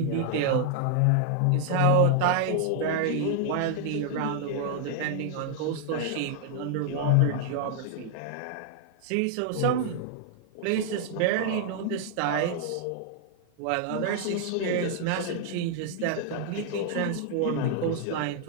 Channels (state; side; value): different; both; correlation -0.01